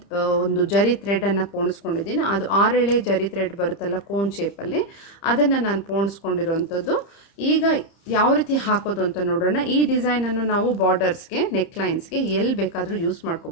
ಒಂದು ಜರಿ ಥ್ರೆಡನ್ನು ಪೋಣಿಸ್ಕೊಂಡಿದ್ದೀನಿ. ಅದು 6 ಎಳೆ ಜರಿ ಥ್ರೆಡ್ ಬರುತ್ತಲ್ಲ ಕೋನ್ ಶೇಪಲ್ಲಿ, ಅದನ್ನು ನಾನು ಪೋಣಿಸ್ಕೊಂಡಿರೋವಂಥದ್ದು. ಈಗ ಯಾವ ರೀತಿ ಹಾಕೋದು ಅಂತ ನೋಡೋಣ. ಈ ಡಿಸೈನನ್ನು ನಾವು ಬಾರ್ಡರ್ಸ್ಗೆ, ನೆಕ್ಲೈನ್ಸ್ಗೆ ಎಲ್ಲಿ ಬೇಕಾದರೂ ಯೂಸ್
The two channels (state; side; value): late; right; 30 ms